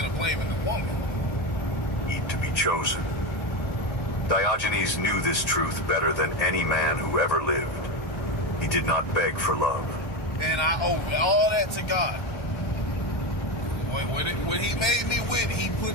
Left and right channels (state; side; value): late; right; 1.3 ms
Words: of blaming the woman. Need to be chosen. Diogenes knew this truth better than any man who ever lived. He did not beg for love. And I owe all that to God. When he made me with, he